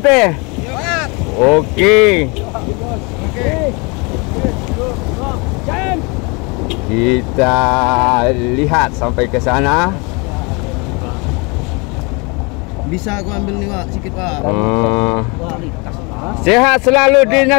Oke. Kita lihat sampai ke sana. Bisa aku ambil nih Pak, sikit Pak. Sehat selalu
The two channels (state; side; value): quieter; right; 29.6 dB